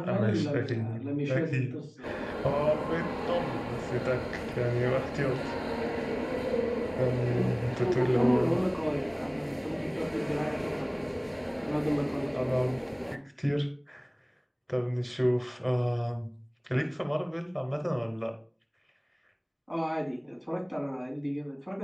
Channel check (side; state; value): both; identical; correlation 1.00